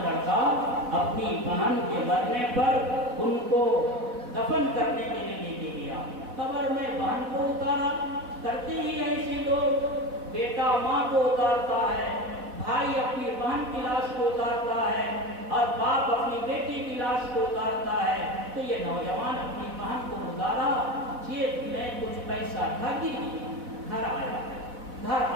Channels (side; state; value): left; late; 4.1 ms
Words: لڑکا اپنی بہن کے مرنے پر ان کو دفن کرنے کے لیے لے کے گیا. قبر میں بہن کو اتارا, کرتے ہی ایسے لوگ, بیٹا ماں کو اتارتا ہے, بھائی اپنی بہن کی لاش کو اتارتا ہے اور باپ اپنی بیٹی کی لاش کو اتارتا ہے. تو یہ نوجوان اپنی بہن کو گزارا, جیب میں کچھ پیسہ تھا, گر گیا, گھر آیا. گھر